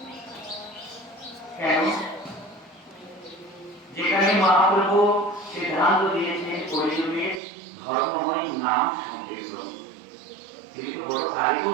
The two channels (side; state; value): left; drops out; at 7.4 s